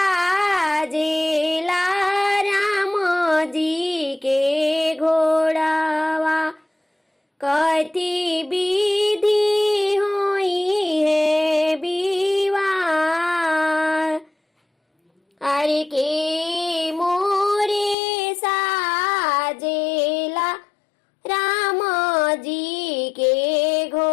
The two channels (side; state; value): right; drops out; at 17.9 s